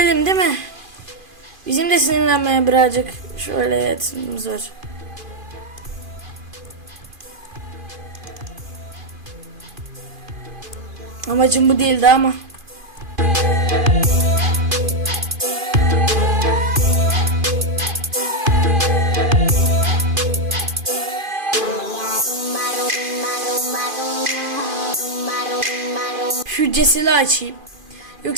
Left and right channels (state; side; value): late; left; 2.5 ms